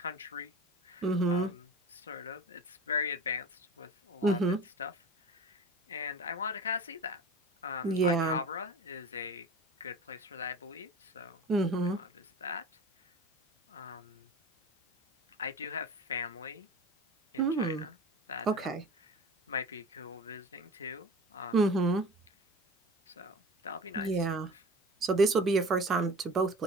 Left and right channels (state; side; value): normal; both; correlation 0.37